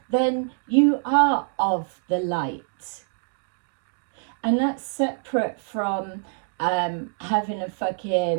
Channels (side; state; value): left; silent; digital silence